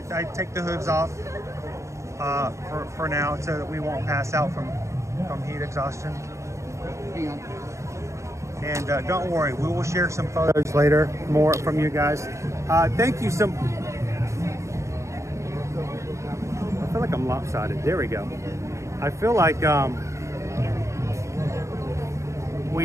take the hooves off for now so that we won't pass out from heat exhaustion? Hang on. And don't worry, we will share some photos later, more from you guys. Thank you I feel like I'm lopsided. There we go. I feel like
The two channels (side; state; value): left; late; 0.14 ms